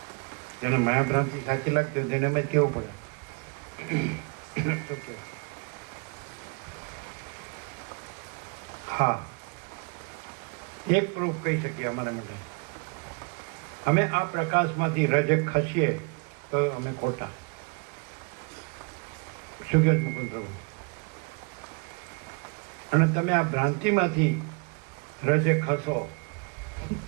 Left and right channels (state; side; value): quieter; left; 33.1 dB